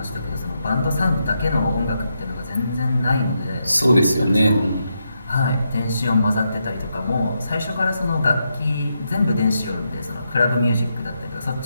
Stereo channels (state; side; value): inverted; both; correlation -0.83